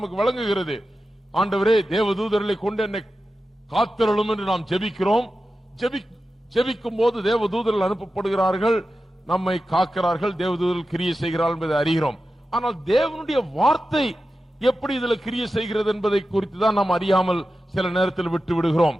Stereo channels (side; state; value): both; normal; correlation 0.92